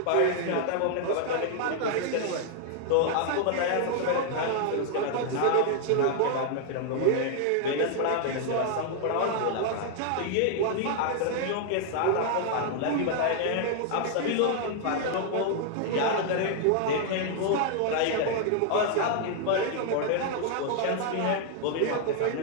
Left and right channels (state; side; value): different; both; correlation 0.00